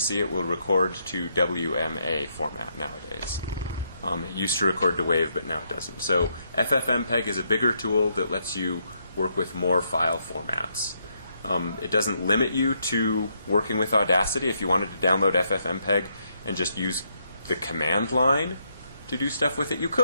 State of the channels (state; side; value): inverted; both; correlation -0.76